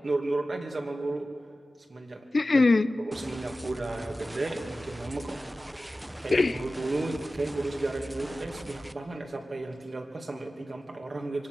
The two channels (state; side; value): normal; both; correlation 0.95